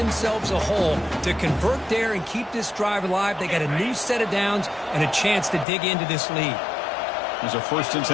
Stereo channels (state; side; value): drops out; right; at 5.7 s